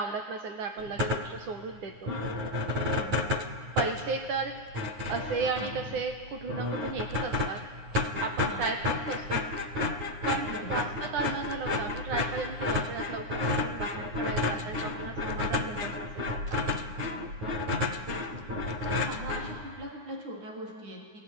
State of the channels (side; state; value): left; late; 9.6 ms